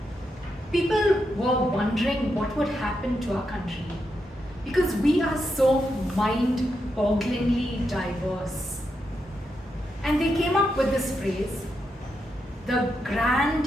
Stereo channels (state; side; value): normal; both; correlation 0.84